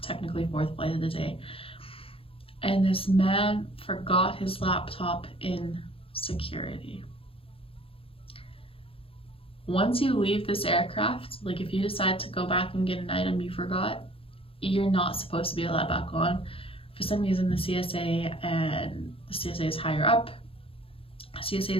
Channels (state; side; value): late; right; 0.27 ms